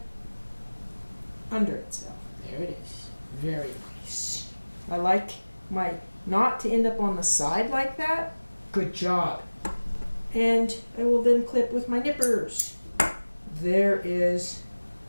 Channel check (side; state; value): both; inverted; correlation -1.00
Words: under itself. There it is. Very nice. I like my knot to end up on the side like that. Good job. And I will then clip with my nippers. There is